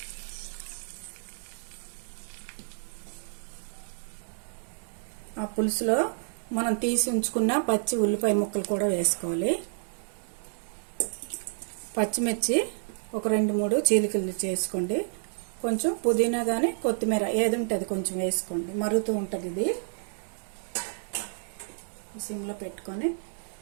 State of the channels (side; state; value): left; silent; digital silence